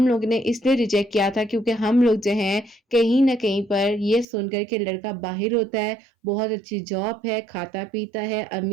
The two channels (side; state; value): left; drops out; at 4.2 s